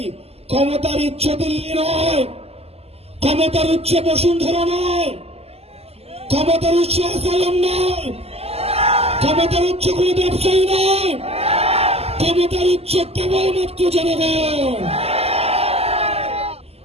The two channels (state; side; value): late; left; 0.29 ms